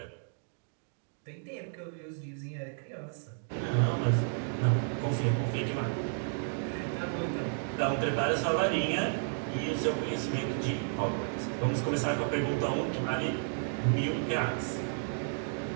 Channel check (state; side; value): silent; left; digital silence